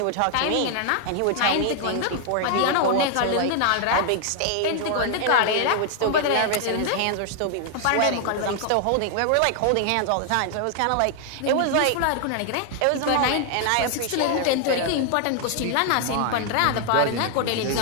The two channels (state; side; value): different; both; correlation 0.00